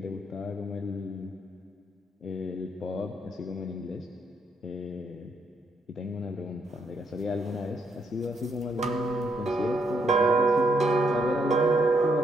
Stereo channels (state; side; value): normal; both; correlation 0.75